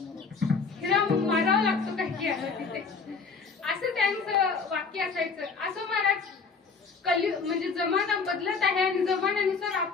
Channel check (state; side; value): quieter; right; 4.9 dB